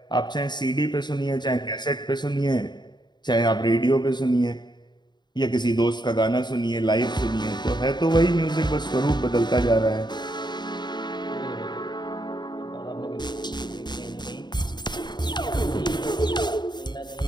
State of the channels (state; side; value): late; right; 0.21 ms